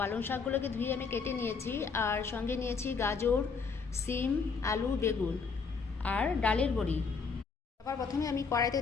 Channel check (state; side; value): quieter; right; 5.2 dB